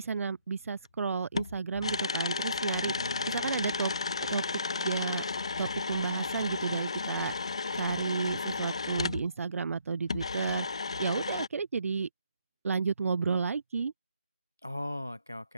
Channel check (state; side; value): inverted; both; correlation -0.68